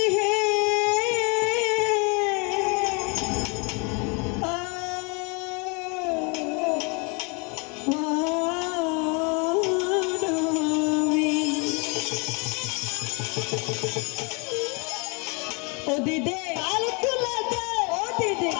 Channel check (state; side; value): quieter; right; 32.2 dB